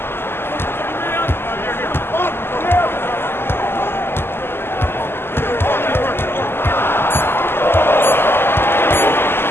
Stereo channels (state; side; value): late; right; 0.11 ms